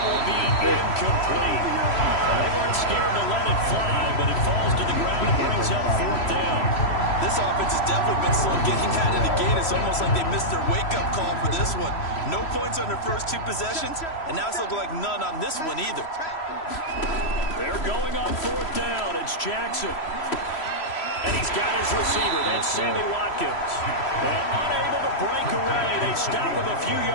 will be incomplete. They weren't scared to let it fly, but it falls to the ground and brings up 4th down. This offense has definitely been slow getting out of the gate. It's almost like they missed their wake-up call for this one. No points on their first 2 possessions, and now it's looking like none on this one either. They're going on 4th down. It's Jackson. And he's got his receiver. That's Sammy Watkins. And unable to break away. They stop him a few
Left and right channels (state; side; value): late; right; 3.1 ms